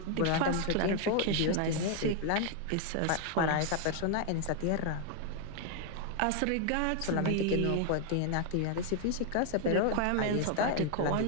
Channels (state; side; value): different; both; correlation 0.00